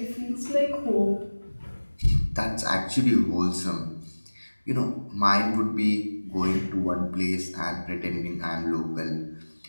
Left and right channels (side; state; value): both; inverted; correlation -1.00